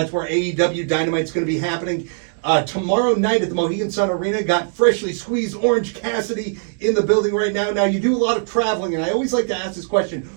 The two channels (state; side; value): silent; left; digital silence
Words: where AEW Dynamite's going to be happening tomorrow night at the Mohegan Sun Arena. Got freshly squeezed Orange Cassidy in the building right now. Now you do a lot of traveling, and I always like to ask this question: